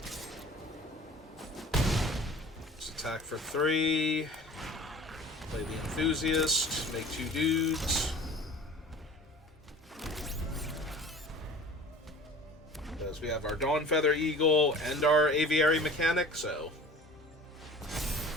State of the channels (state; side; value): normal; both; correlation 0.42